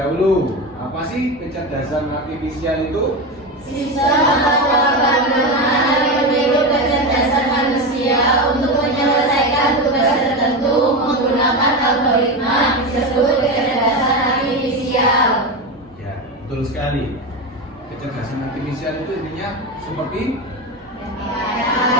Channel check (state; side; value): normal; both; correlation 0.18